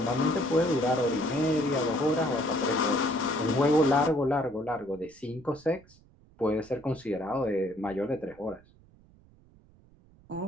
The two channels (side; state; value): right; noise; rumble, 27 dB below the sound